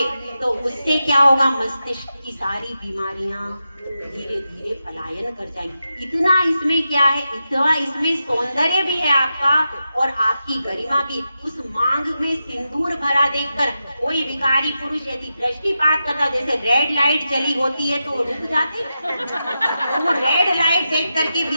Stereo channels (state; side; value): inverted; both; correlation -0.89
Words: तो उससे क्या होगा, मस्तिष्क की सारी बीमारियां धीरे धीरे पलायन कर जाएंगी। इतना इसमें क्या है, इतना इसमें सौंदर्य भी है आपका और आपकी गरिमा भी। उस मांग में सिंदूर भरा देखकर कोई विकारी पुरुष यदि दृष्टिपात करता, जैसे रेड लाइट जली होती है तो रुक जाते, तो वो रेड लाइट देख करके